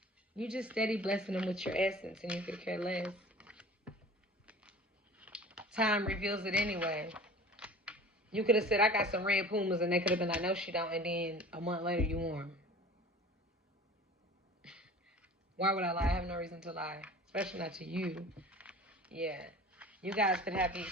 you just steady blessing them with your essence, and you could care less. Time reveals it anyway. You could have said, I got some red Pumas, and they could have been like, no, she don't, and then a month later you wore them. Why would I lie? I have no reason to lie, especially not to you. Yeah. You guys could be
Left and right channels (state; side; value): normal; both; correlation 0.41